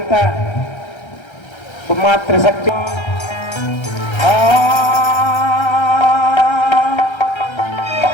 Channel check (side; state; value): right; late; 1.3 ms